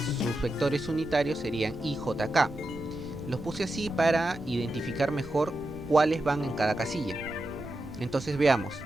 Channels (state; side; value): noise; right; rumble, 16 dB below the sound